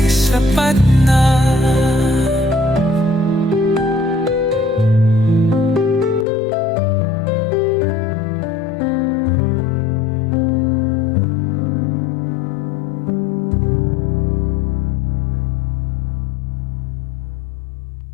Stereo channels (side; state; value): right; drops out; at 6.2 s